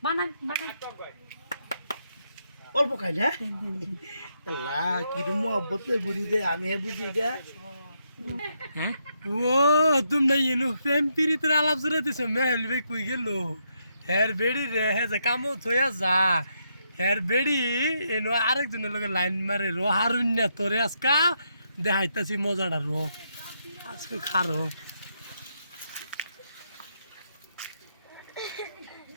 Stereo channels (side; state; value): both; inverted; correlation -0.79